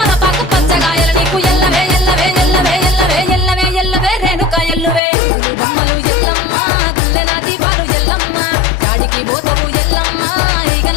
పచ్చగాయలు నీకు ఎల్లవే ఎల్లవే ఎల్లవే ఎల్లవే ఎల్లవే ఎల్లవే రేణుక ఎల్లువే బొమ్మలు ఎల్లమ్మ గుల్లెన దీపాలు ఎల్లమ్మ చాడికి పోతవు ఎల్లమ్మ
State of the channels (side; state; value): right; drops out; at 5.0 s